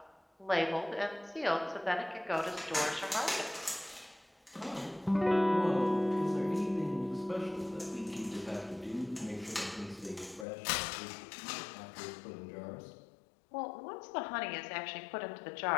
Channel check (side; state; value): right; drops out; at 10.5 s